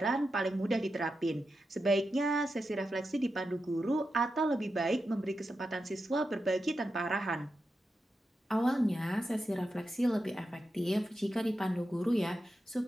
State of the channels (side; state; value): both; normal; correlation 0.88